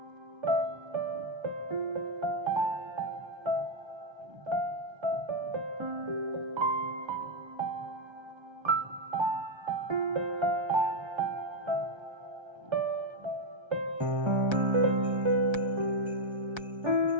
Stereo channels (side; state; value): left; late; 1.3 ms